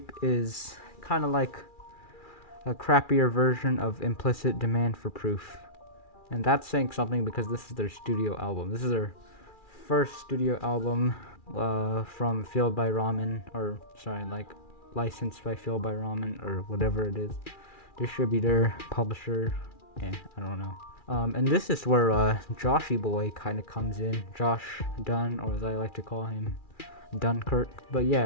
is kind of like a crappier version of Implicit Demand for Proof. And that's saying something because this is their studio album. This is their first studio album from Fueled by Ramen, or sorry, like licensed by Fueled by Ramen, or whatever it is. Distributor, publisher, I don't know. And this is where Joshy Boy kind of comes in. Josh Dunn, or as I like to call him, Dunkirk. But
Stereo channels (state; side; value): late; right; 2.4 ms